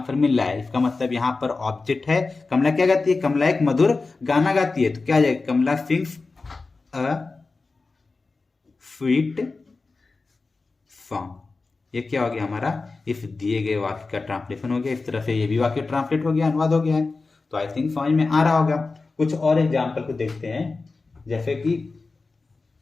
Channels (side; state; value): right; quieter; 3.9 dB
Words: फिर मिल रहा है, इसका मतलब यहाँ पर ऑब्जेक्ट है, कमला क्या गाती है, कमला एक मधुर गाना गाती है, तो क्या आ जाएगा, कमला सिंग्स अ स्वीट सॉन्ग। ये क्या हो गया हमारा, इस दिए गए वाक्य का ट्रांसलेशन हो गया। इस तरह से ये भी वाक्य ट्रांसलेट हो गया, अनुवाद हो गया है। तो आई थिंक समझ में आ रहा होगा। कुछ और एग्जाम्पल को देखते हैं, जैसे कि